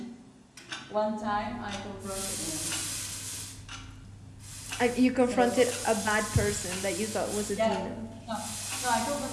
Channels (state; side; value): identical; both; correlation 1.00